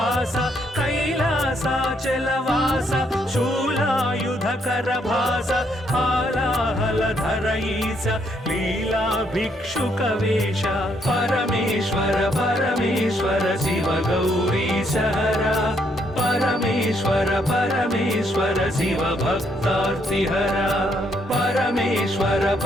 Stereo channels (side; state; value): both; normal; correlation 0.73